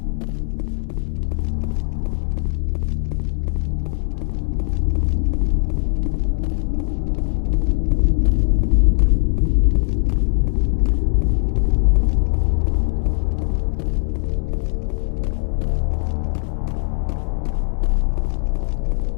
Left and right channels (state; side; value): silent; right; digital silence